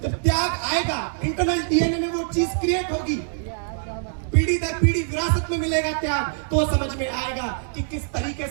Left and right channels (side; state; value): left; silent; digital silence